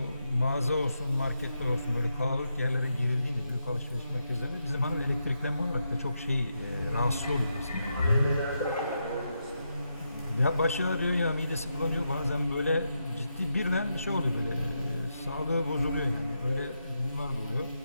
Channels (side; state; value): both; inverted; correlation -0.84